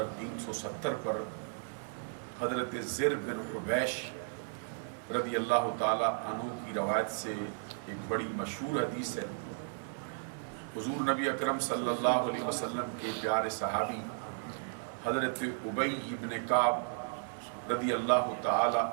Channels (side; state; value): left; silent; digital silence